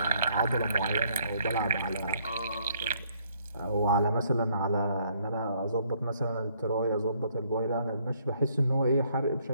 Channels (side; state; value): both; inverted; correlation -0.67